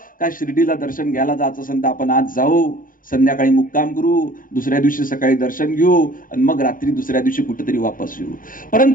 का शिर्डीला दर्शन घ्यायला जायचं असेल तर आपण आज जाऊ, संध्याकाळी मुक्काम करू, दुसऱ्या दिवशी सकाळी दर्शन घेऊ आणि मग रात्री दुसऱ्या दिवशी कुठेतरी वापस येऊ.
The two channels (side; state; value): right; late; 0.40 ms